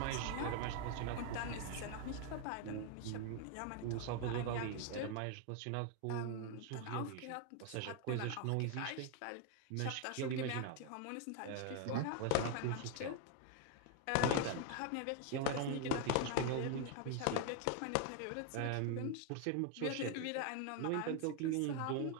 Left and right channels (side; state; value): both; different; correlation 0.01